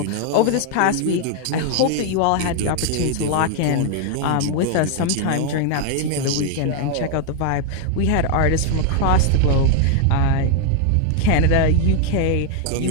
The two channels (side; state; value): both; different; correlation 0.00